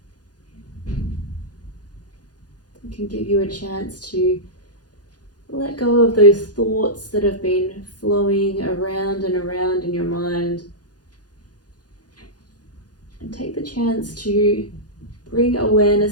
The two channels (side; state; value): right; late; 0.69 ms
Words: Can give you a chance to let go of those thoughts that have been flowing around and around in your mind, and take the chance to bring